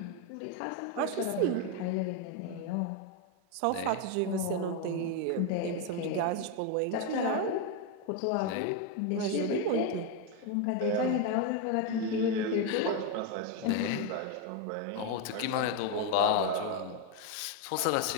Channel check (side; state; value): both; different; correlation 0.02